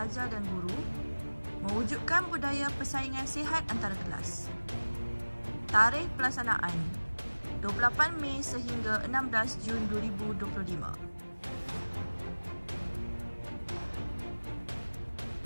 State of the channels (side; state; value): both; inverted; correlation -1.00